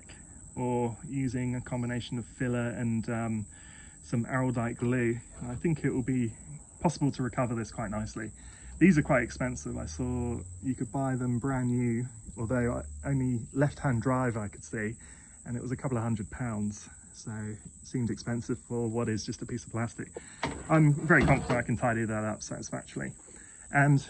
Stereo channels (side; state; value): both; identical; correlation 1.00